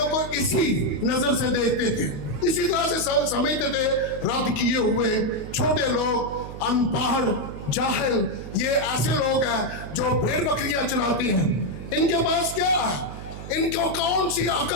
को इसी नजर से देखते थे, इसी तरह से समझते थे। रद्द किए हुए छोटे लोग, अनपढ़, जाहिल, ये ऐसे लोग हैं जो भेड़ बकरियां चराते हैं। इनके पास क्या है? इनको कौन सी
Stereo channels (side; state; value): right; noise; hum, 11 dB below the sound